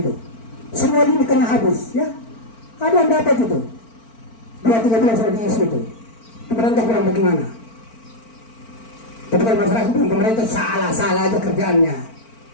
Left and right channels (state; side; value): late; right; 4.4 ms